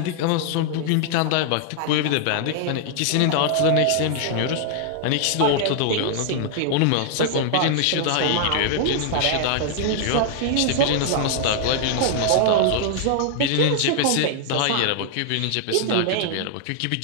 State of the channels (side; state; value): both; different; correlation -0.01